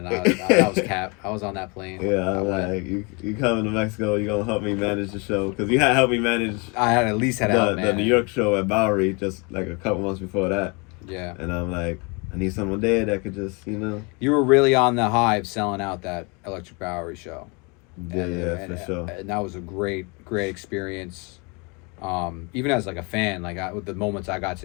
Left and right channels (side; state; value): right; quieter; 30.5 dB